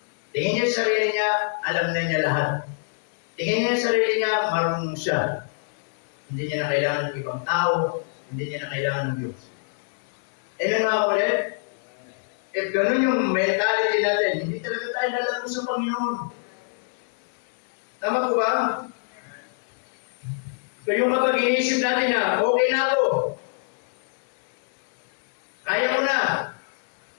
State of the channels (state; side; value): silent; right; digital silence